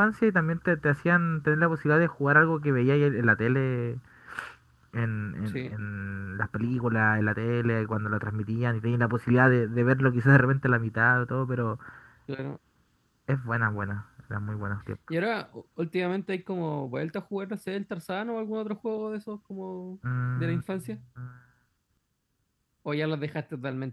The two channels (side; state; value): both; identical; correlation 1.00